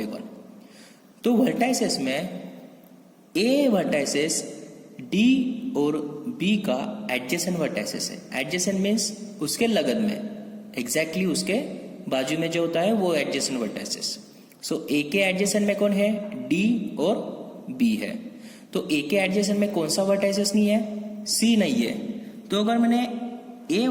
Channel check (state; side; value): identical; both; correlation 1.00